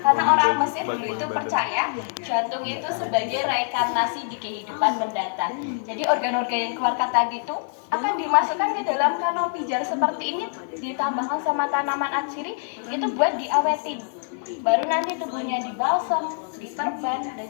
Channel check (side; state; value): right; silent; 62 dB below the other